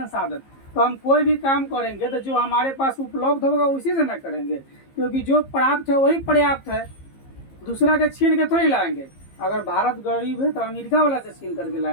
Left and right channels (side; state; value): right; late; 15 ms